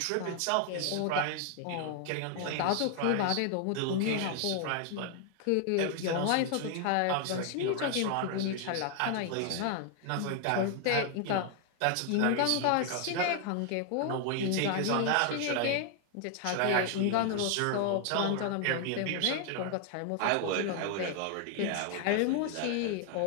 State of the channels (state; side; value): different; both; correlation 0.00